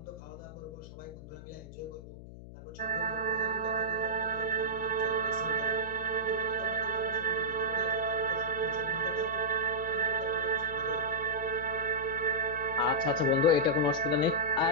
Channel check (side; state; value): left; noise; hum, 14 dB below the sound